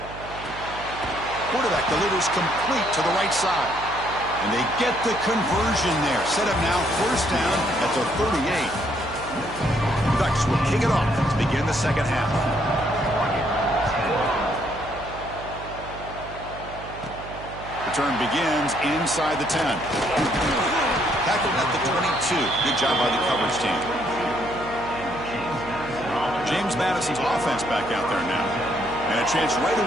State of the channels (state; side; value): noise; right; hum, 14 dB below the sound